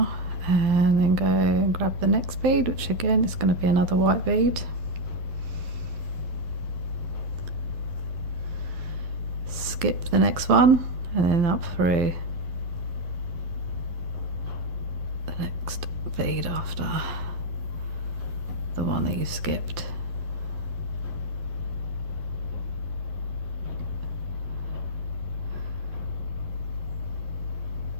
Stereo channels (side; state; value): left; late; 12 ms